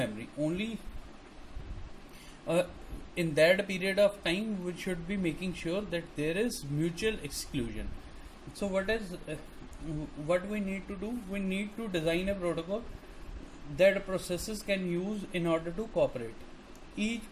Only in that period of time we should be making sure that there is mutual exclusion. So what we need to do? We need to design a protocol that processes can use in order to cooperate. Each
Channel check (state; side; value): identical; both; correlation 1.00